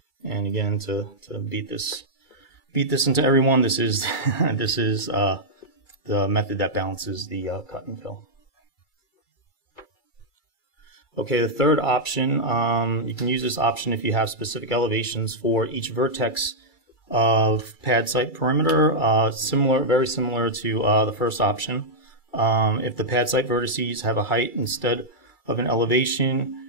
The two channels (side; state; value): right; late; 2.3 ms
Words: And again, to beat this into everyone, this is this is the method that balances the cut and fill. Okay, the third option, you can use this option if you have specific elevations for each vertex of pad site perimeter, very similar to the first option. If the pad site vertices have a height instead of an elevation,